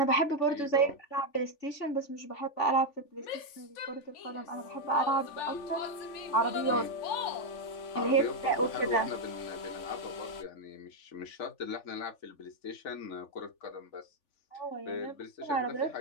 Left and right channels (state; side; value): late; right; 3.5 ms